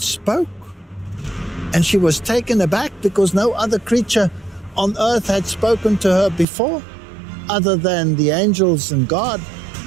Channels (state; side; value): drops out; left; at 6.5 s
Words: spoke. And she was taken aback because no other creature on earth had spoken to her before, other than the angels and God.